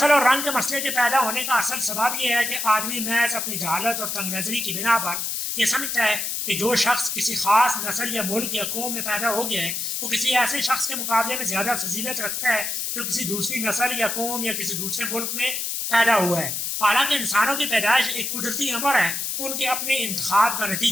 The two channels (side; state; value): left; noise; hiss, 2 dB below the sound